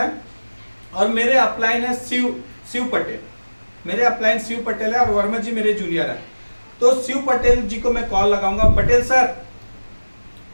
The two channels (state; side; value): inverted; both; correlation -1.00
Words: और मेरे अपलाइन है शिव पटेल, मेरे अपलाइन शिव पटेल है और वर्मा जी मेरे जूनियर हैं। तो शिव पटेल जी को मैं कॉल लगाऊंगा, पटेल सर,